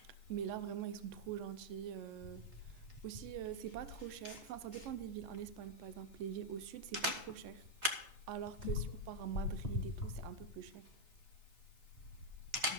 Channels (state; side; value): late; left; 3.6 ms